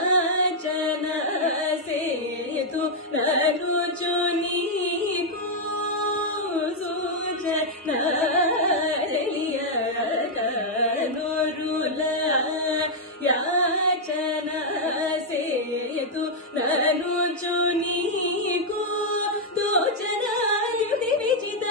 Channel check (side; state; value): both; normal; correlation -0.03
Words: సేతు నరుచు నీకు సూచన తెలియక నోరుల యాచన సేతు నరుచు నీకు దోచనాయుధి